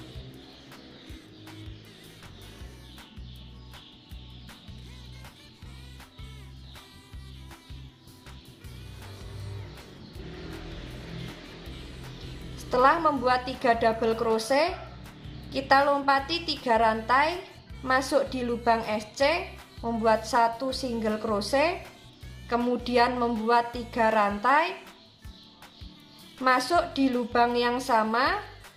Setelah membuat 3 double crochet, kita lompati 3 rantai, masuk di lubang SC, membuat 1 single crochet, kemudian membuat 3 rantai, masuk di lubang yang sama,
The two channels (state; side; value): identical; both; correlation 1.00